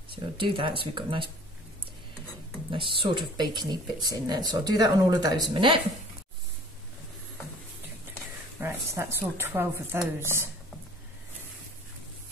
So I'll do that, so we've got nice sort of bacony bits in there. So I'll do that on all of those in a minute. Right, so that's all 12 of those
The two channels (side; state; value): both; normal; correlation 0.49